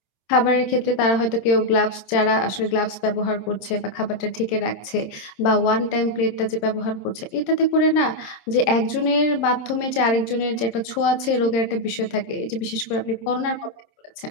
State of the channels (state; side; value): late; right; 26 ms